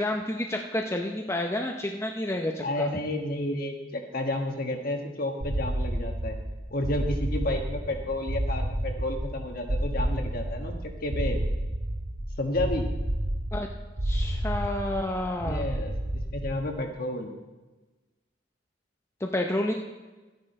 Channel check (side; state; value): both; normal; correlation 0.65